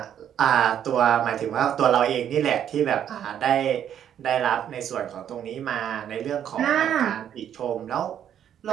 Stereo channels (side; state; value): left; quieter; 9.7 dB